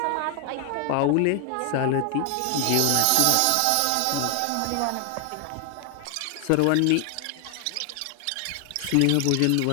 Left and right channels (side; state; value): both; different; correlation 0.00